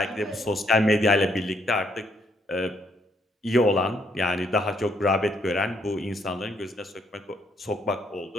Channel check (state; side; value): normal; both; correlation 0.72